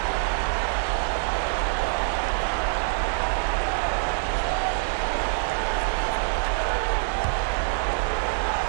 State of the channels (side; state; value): left; silent; 62 dB below the other